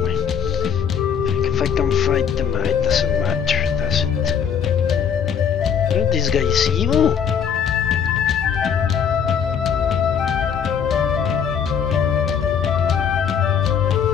If I can fight them, it doesn't matter, does it? Aren't these guys evil?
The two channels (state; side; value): quieter; right; 7.6 dB